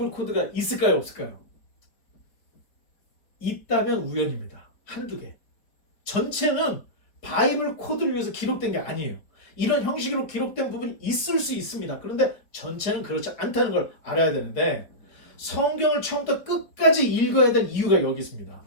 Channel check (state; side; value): late; right; 4.5 ms